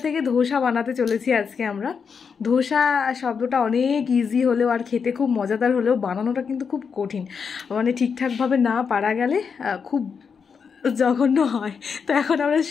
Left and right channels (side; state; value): right; quieter; 6.1 dB